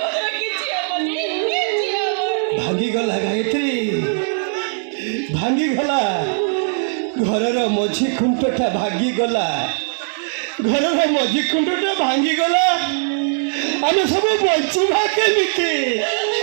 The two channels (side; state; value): left; silent; 66 dB below the other